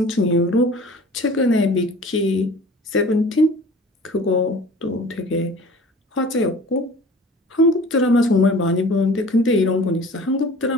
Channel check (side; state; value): both; normal; correlation 0.44